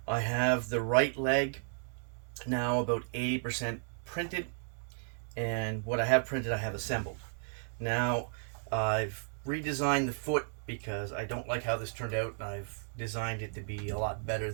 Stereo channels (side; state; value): left; silent; digital silence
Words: I have the right leg now about 80% printed, and what I have printed I have assembled. Now I've redesigned the foot because I don't like how this turned out. I've designed it to be a lot better